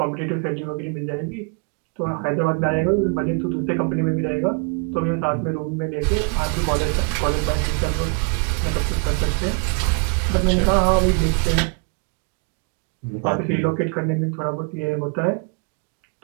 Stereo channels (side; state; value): left; quieter; 35.5 dB